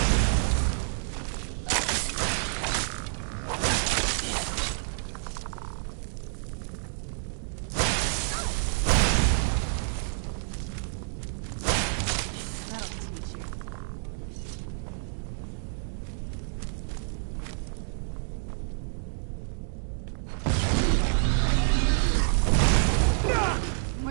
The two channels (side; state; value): left; silent; digital silence